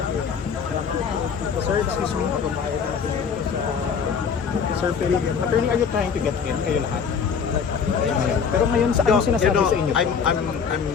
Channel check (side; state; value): right; quieter; 6.4 dB